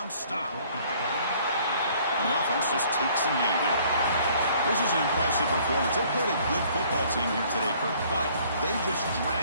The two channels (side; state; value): both; inverted; correlation -0.58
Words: stop. And the offense just takes a knee here. This is an impressive performance. They played a good football team here today, Kirk, but they just